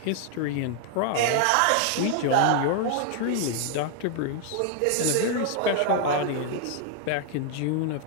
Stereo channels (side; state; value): both; different; correlation 0.00